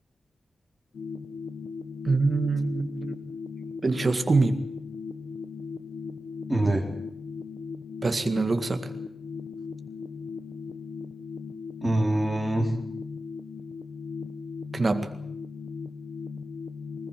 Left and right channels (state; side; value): normal; both; correlation 0.92